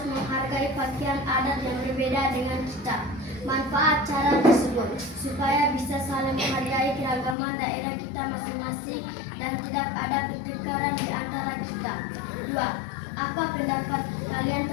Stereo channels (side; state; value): right; drops out; at 7.4 s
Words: menghargai pakaian adat yang berbeda dengan kita. Manfaat cara tersebut supaya bisa saling menghargai keragaman daerah kita masing-masing dan tidak ada pertengkaran di antara kita. 2. Apa pendapat kalian